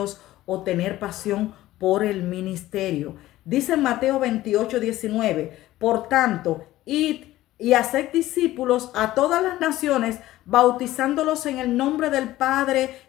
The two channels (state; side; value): quieter; right; 15.7 dB